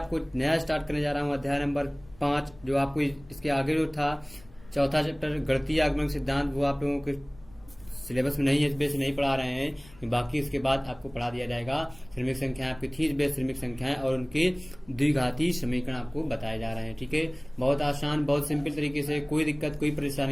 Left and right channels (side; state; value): left; noise; rumble, 23 dB below the sound